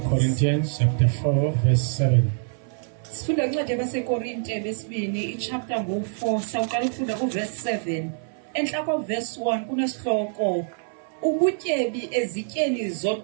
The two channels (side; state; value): left; silent; 62 dB below the other